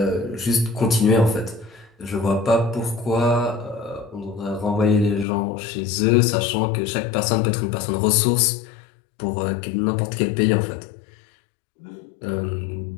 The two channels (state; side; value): drops out; right; at 5.2 s